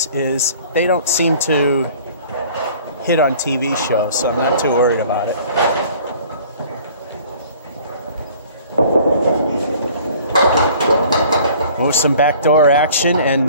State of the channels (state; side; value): inverted; both; correlation -0.51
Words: is they don't seem to hit on TV shows, so I'm not too worried about it. Oh, some backdoor action and